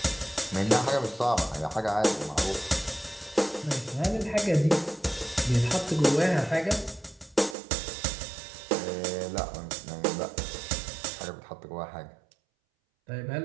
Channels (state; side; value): drops out; left; at 7.6 s